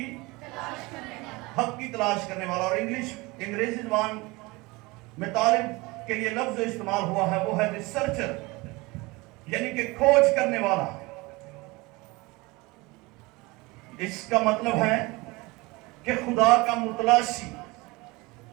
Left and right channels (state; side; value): quieter; left; 23.6 dB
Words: تلاش کرنے والا. اور انگریزی زبان میں طالب کے لیے لفظ جو استعمال ہوا ہے وہ ہے ریسرچر, یعنی کہ کھوج کرنے والا. اس کا مطلب ہے کہ خدا کا متلاشی,